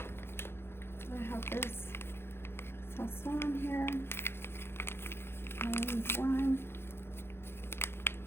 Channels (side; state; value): right; late; 0.11 ms